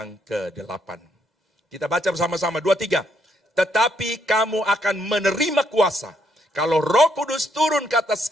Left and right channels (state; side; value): normal; both; correlation 0.73